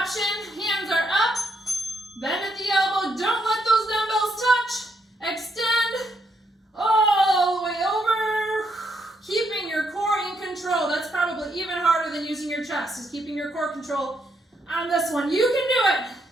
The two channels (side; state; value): both; normal; correlation 0.76